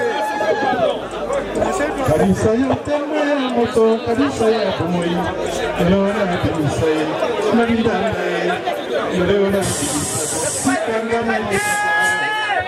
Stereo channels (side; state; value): both; identical; correlation 1.00